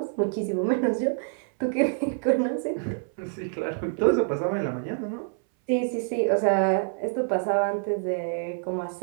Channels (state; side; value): silent; left; 59 dB below the other